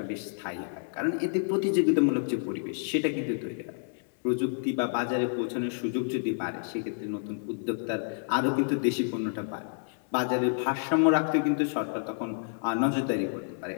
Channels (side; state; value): right; silent; digital silence